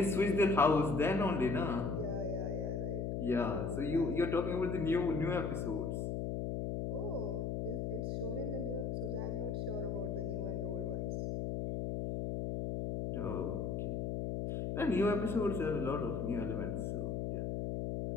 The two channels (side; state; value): left; noise; hum, 1 dB below the sound